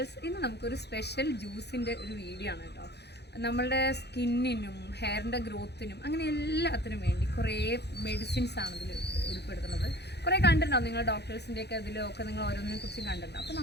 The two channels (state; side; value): late; right; 0.49 ms